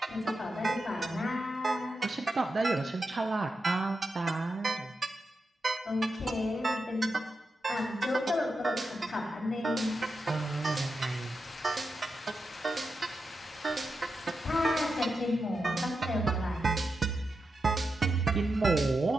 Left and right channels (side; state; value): both; normal; correlation 0.88